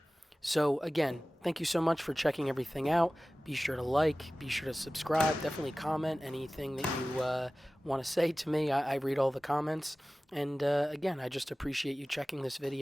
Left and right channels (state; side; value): normal; both; correlation 0.97